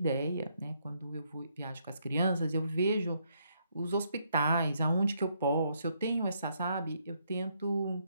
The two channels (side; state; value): both; inverted; correlation -0.74